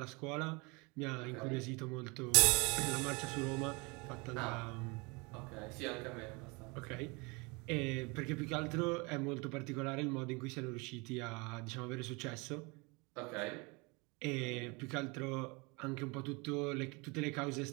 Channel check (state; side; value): quieter; left; 28.1 dB